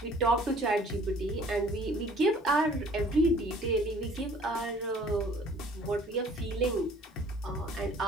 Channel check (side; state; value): both; normal; correlation 0.54